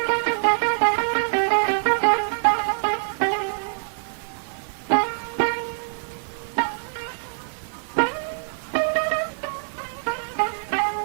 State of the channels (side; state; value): left; silent; digital silence